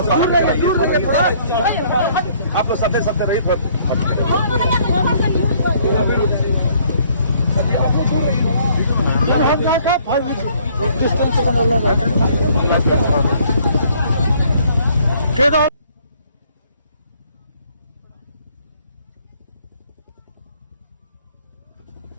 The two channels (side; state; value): both; inverted; correlation -0.62